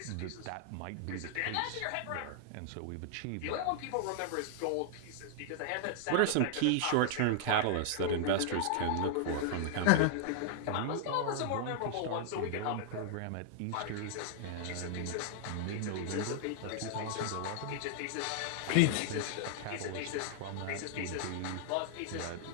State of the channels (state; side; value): different; both; correlation -0.01